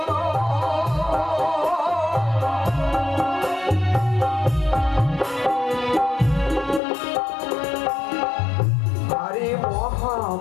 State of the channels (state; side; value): drops out; right; at 6.8 s